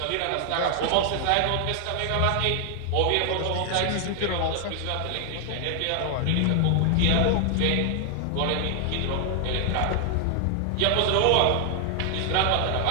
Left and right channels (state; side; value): different; both; correlation 0.00